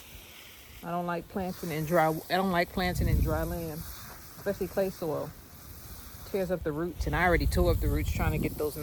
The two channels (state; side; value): identical; both; correlation 1.00